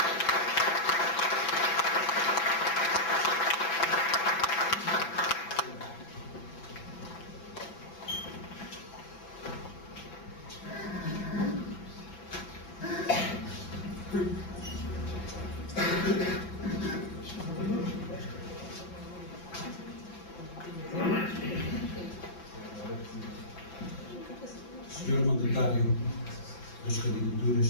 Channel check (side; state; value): right; late; 6.0 ms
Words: Senhor Mandatário das